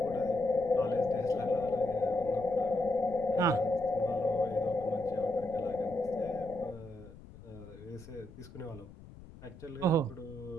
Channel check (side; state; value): left; noise; rumble, 18 dB below the sound